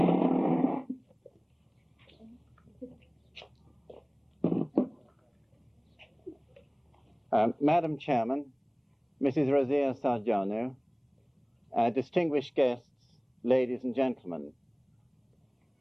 Madam Chairman, Mrs. Razia Sarjano, distinguished guests, ladies and gentlemen.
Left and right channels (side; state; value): both; identical; correlation 1.00